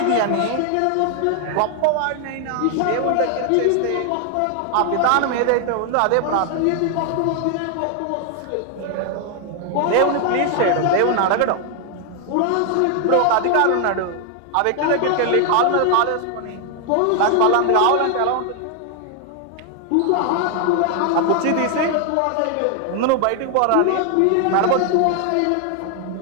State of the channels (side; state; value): both; different; correlation 0.00